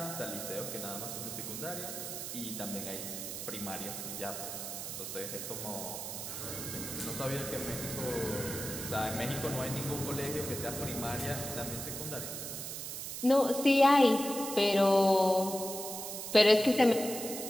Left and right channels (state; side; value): noise; right; hiss, 6 dB below the sound